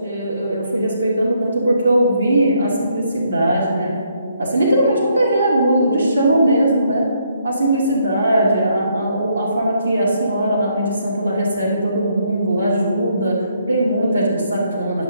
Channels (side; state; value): both; inverted; correlation -0.72